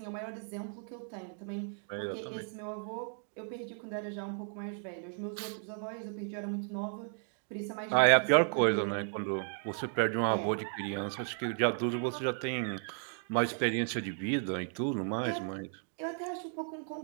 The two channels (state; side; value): silent; left; 55 dB below the other